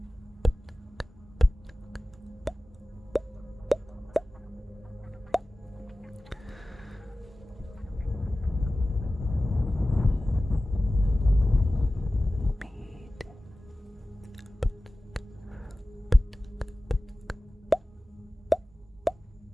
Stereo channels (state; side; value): normal; both; correlation 0.97